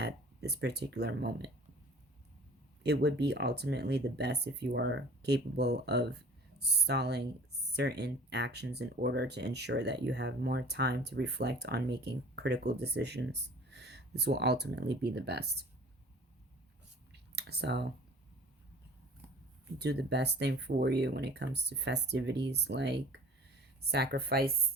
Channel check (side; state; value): both; normal; correlation 0.46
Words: this particular moment. It would be ultimately the best if you are capable of stalling certain actions in order to ensure that you have more time to reflect on making critical decisions. This will ultimately be the best. So, do the best thing for you when it comes to festivities like